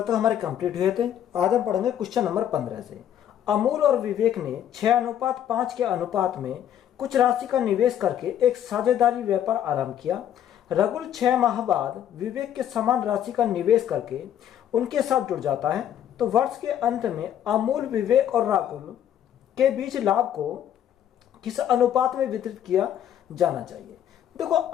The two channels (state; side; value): quieter; right; 10.3 dB